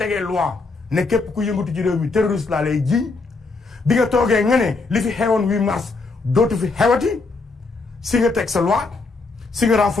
loi ne képp ku yëngatu ci réew mi terroriste laa lay jiiñ bi nga toogee nga ne li fi xewoon 8 mars dootu fi xewati si nga teg sa loi si nga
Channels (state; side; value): quieter; right; 3.8 dB